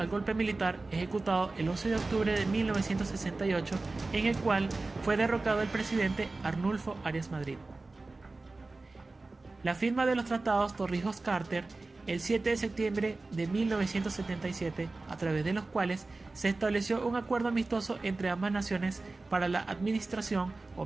golpe militar ejecutado el 11 de octubre de 1968, en el cual fue derrocado el presidente Arnulfo Arias Madrid. La firma de los tratados Torrijos-Carter el 7 de septiembre de 1977, a través de los cuales se estableció un acuerdo amistoso entre ambas naciones para la administración,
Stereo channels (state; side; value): quieter; left; 3.4 dB